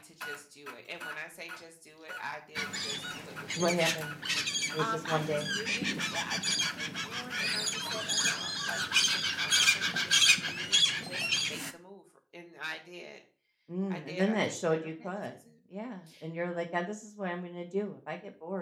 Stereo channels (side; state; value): both; identical; correlation 1.00